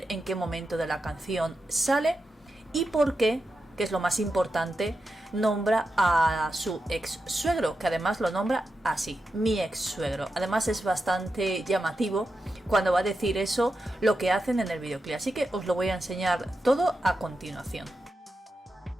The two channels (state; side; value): normal; both; correlation 0.89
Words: en qué momento de la canción sale y por qué, que es lo más importante, nombra a su ex suegro, que además lo nombra así, mi ex suegro. Además es bastante llamativo cuando va a decir eso, lo que hacen en el videoclip, así que os lo voy a enseñar todo a continuación.